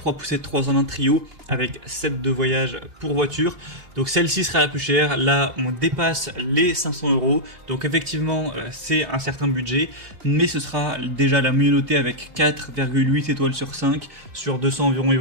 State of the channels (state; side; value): late; left; 2.9 ms